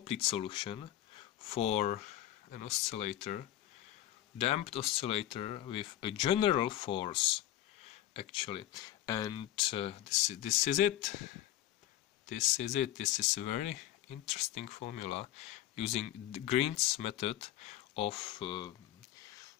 solution for an oscillator, damped oscillator with a general force actually, and this is it. This is it. This is a very interesting formula using the Green's method of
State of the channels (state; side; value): quieter; right; 13.3 dB